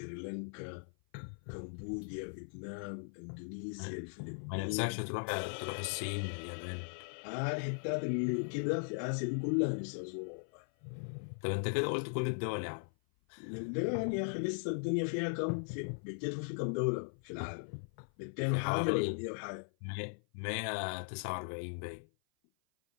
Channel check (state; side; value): silent; right; 52 dB below the other